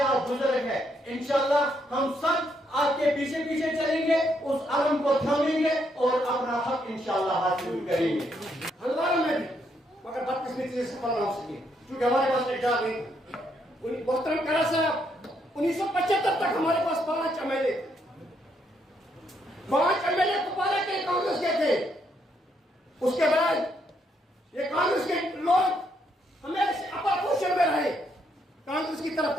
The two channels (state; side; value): normal; both; correlation 0.75